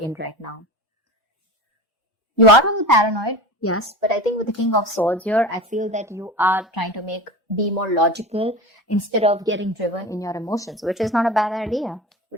right now. You are really paranoid. Yes, but I think with the King of Swords here, I feel that you are trying to be more logical instead of getting driven in your emotions, which is not a bad idea. We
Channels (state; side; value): normal; both; correlation 0.30